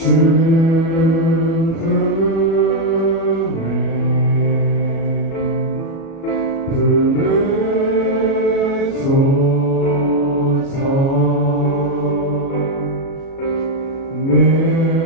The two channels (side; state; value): right; late; 37 ms